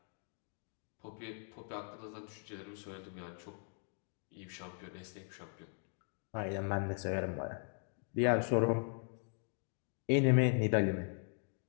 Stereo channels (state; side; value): silent; right; 52 dB below the other